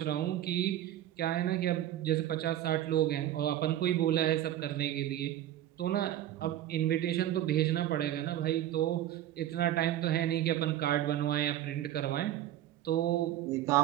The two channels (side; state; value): left; quieter; 12.6 dB